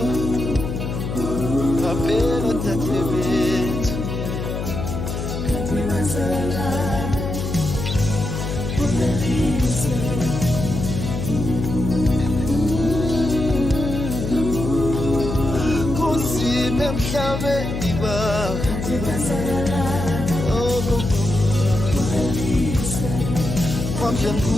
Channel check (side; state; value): left; noise; hum, 4 dB below the sound